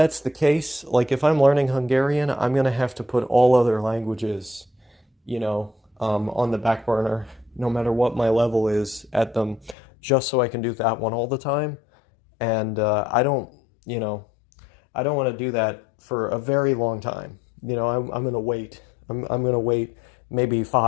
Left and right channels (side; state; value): right; drops out; at 9.8 s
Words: the case, like if I'm learning Hungarian, I'm gonna have to put all other languages, on the back burner, no matter what my level is at them, just so I can do that one all the time. And you know, I don't want to do that for a very long time. I'm gonna wait. I'm gonna wait maybe